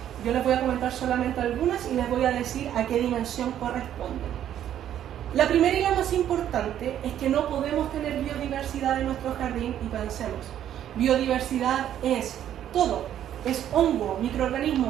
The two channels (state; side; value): quieter; left; 10.8 dB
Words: Yo les voy a comentar solamente algunas y les voy a decir a qué dimensión corresponden. La primera y la más importante es que no podemos tener biodiversidad en nuestro jardín y pensemos. Biodiversidad es todo. Es hongo,